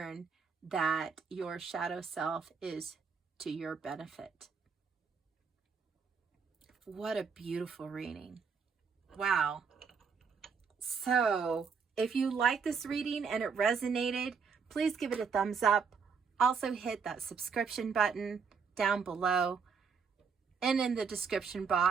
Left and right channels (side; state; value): left; quieter; 5.9 dB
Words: that your shadow self is to your benefit. What a beautiful reading. Wow. So, if you like this reading and it resonated, please give it a thumbs up. Also hit that subscription button down below. And in the description